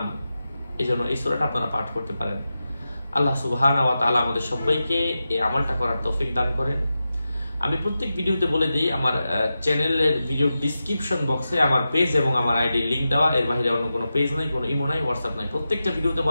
এজন্য এই সূরাটা আপনারা পাঠ করতে পারেন। আল্লাহ সুবহানাহু ওয়া তাআলা আমাদের সবাইকে এই আমলটা করার তৌফিক দান করেন। আমি প্রত্যেক ভিডিওতে বলে দিই, আমার চ্যানেলের ভিডিও ডেসক্রিপশন বক্সে আমার পেজ এবং আমার আইডি লিংক দেওয়া। এর বাইরে অন্য কোনো পেজ নাই, কোনো ইমো নাই, হোয়াটসঅ্যাপ নাই। প্রত্যেকটা ভিডিওতে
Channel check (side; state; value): both; inverted; correlation -0.91